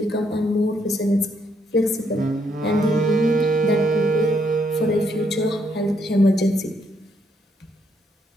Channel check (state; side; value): normal; both; correlation 0.73